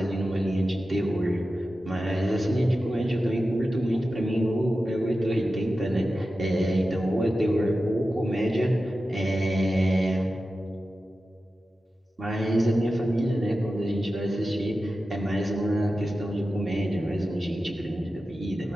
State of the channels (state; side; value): normal; both; correlation 0.93